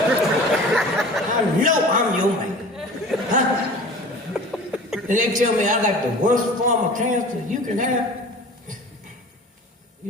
I know I'm your man. Huh? And they tell me I got the worst form of cancer you can have.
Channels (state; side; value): normal; both; correlation 0.41